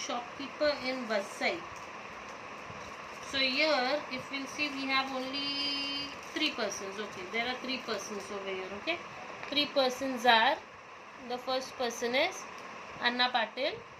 in Vasai. So here, if we'll see, we have only 3 persons. Okay, there are 3 persons over here. Okay, 3 persons are, the first person is Anna Patil,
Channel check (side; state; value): both; identical; correlation 1.00